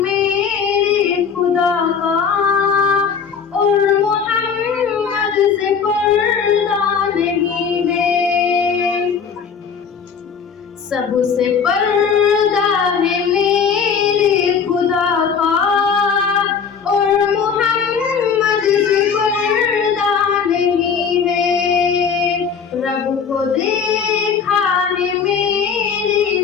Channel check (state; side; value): quieter; right; 6.5 dB